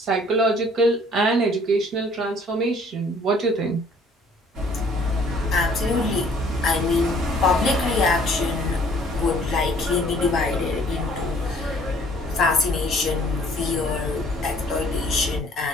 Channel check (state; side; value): normal; both; correlation 0.57